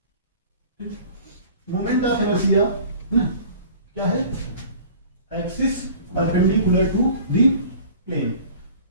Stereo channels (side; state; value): both; inverted; correlation -0.45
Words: Moment of inertia क्या है, axis perpendicular to the plane,